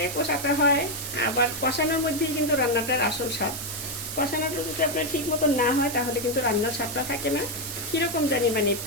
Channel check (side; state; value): right; noise; hiss, 7 dB below the sound